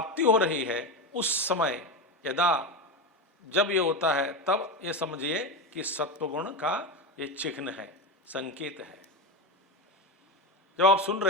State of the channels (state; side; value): normal; both; correlation 0.18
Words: हो रही है, उस समय यदा जब ये होता है, तब ये समझिए कि सत्वगुण का ये चिन्ह है, संकेत है। जब आप सुन